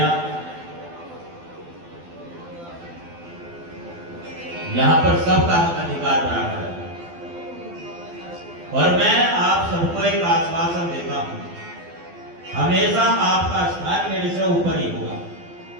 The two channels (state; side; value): late; left; 12 ms